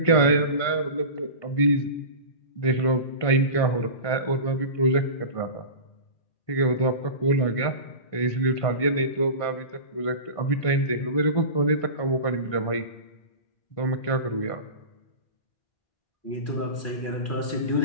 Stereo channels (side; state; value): right; late; 1.5 ms